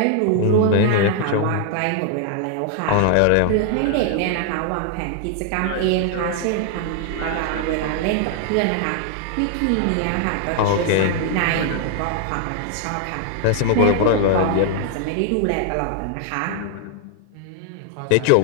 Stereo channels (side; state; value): both; different; correlation 0.00